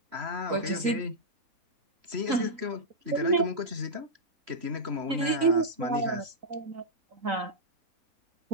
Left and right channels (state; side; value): late; left; 3.9 ms